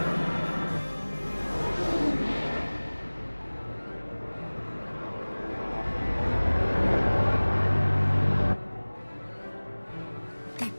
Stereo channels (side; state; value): both; inverted; correlation -1.00